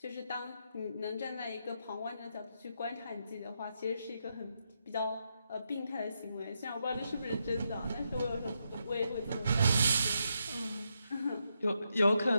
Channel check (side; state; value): both; inverted; correlation -0.82